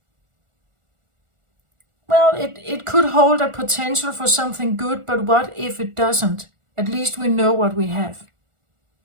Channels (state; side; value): late; left; 1.4 ms